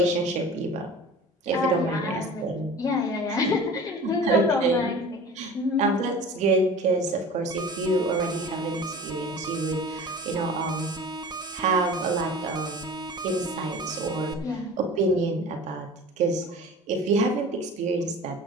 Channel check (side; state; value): both; normal; correlation 0.39